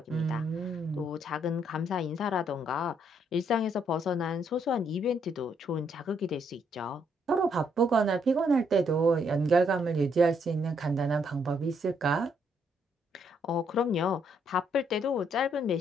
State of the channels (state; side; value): normal; both; correlation 0.72